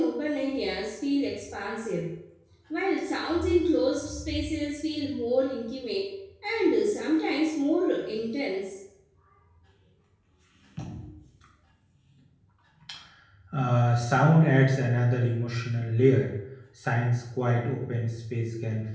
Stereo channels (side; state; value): both; identical; correlation 1.00